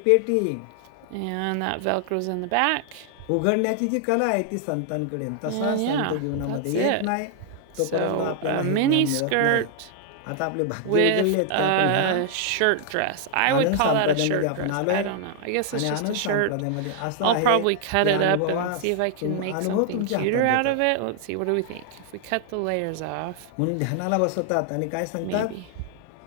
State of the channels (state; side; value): different; both; correlation 0.00